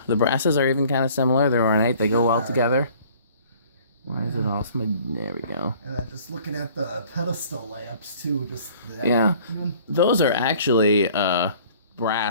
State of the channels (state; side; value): inverted; both; correlation -0.53